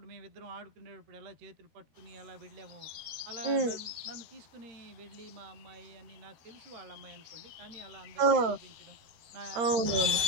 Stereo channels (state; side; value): late; left; 12 ms